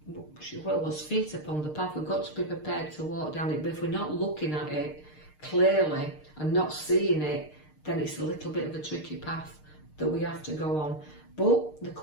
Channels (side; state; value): right; late; 6.6 ms